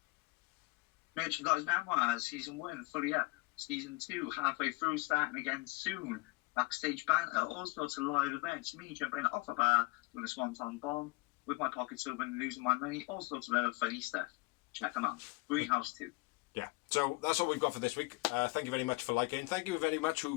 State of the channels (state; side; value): quieter; right; 24.5 dB